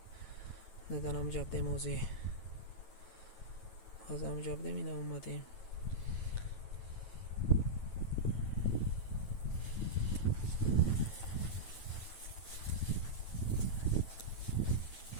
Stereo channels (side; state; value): right; late; 9.2 ms